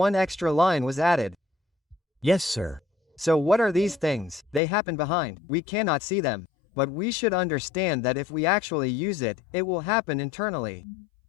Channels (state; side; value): drops out; right; at 4.6 s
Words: extra line was added. Yes, sir. So what are these things? They happen behind, we cannot see them. But we should understand that if we actually use it, it will happen internally.